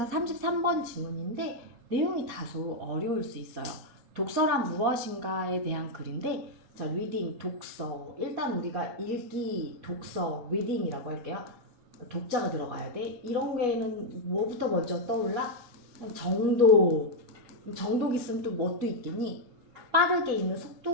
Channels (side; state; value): left; late; 4.2 ms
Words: 33번 지문인데 내용이 다소 어려울 수 있어요. 독서란 무엇인가에 대한 글인데, 자, 리딩, 독서. 일단 우리가 읽기, 독서, 리딩이라고 할게요. 독자가 들어가야 돼. 이런 게는 뭐부터 먼저 떠올라? 정독. 정독 있으면 또 뭣도 있겠니? 빠르게 읽는